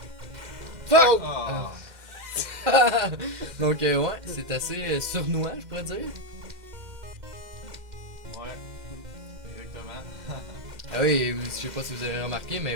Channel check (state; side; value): late; left; 2.1 ms